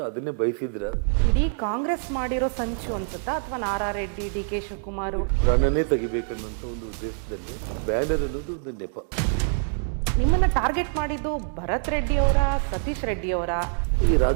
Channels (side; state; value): left; silent; digital silence